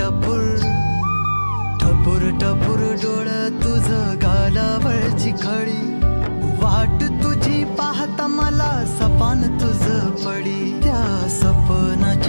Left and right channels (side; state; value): both; inverted; correlation -1.00